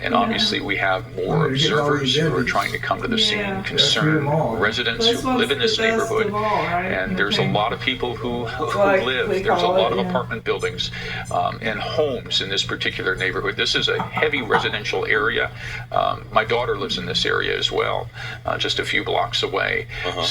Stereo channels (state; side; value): identical; both; correlation 1.00